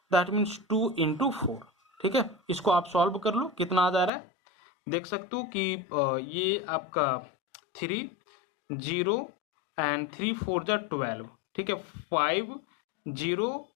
that means 2 into 4, ठीक है। इसको आप solve कर लो, कितना आ जा रहा है देख सकते हो कि ये आपका 3 0 एंड 3 4 जा 12, ठीक है। 5 0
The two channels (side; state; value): right; drops out; at 4.1 s